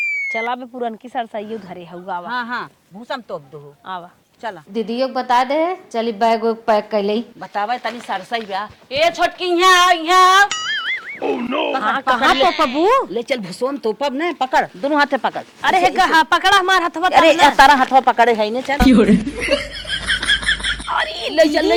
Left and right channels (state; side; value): identical; both; correlation 1.00